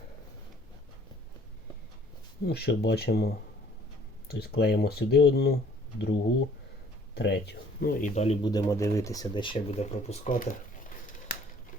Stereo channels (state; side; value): normal; both; correlation 0.57